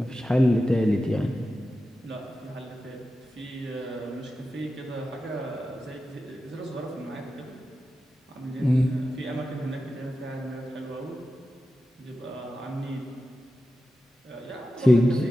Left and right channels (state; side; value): normal; both; correlation 0.92